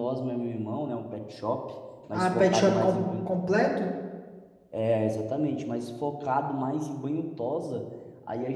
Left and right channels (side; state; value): both; identical; correlation 1.00